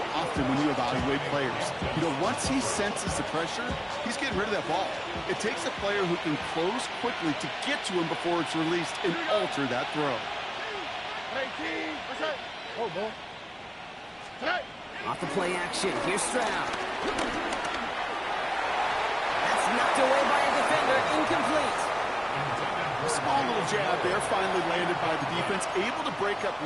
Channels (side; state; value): both; identical; correlation 1.00